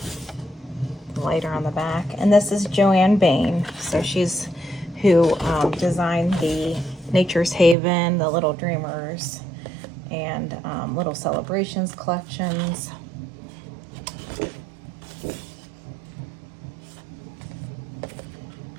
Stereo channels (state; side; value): drops out; left; at 7.8 s